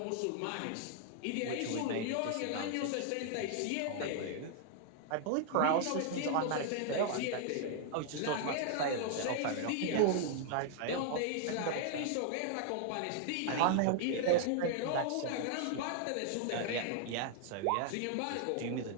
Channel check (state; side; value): different; both; correlation 0.00